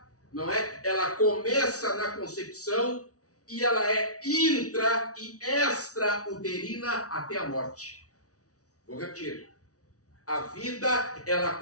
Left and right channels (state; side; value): late; right; 0.67 ms